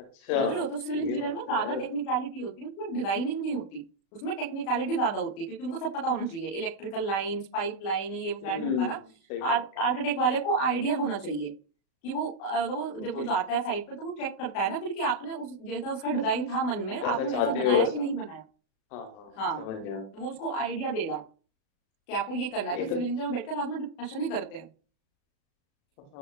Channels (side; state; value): right; late; 36 ms